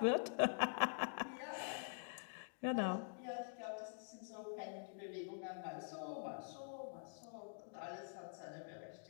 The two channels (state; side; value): silent; right; digital silence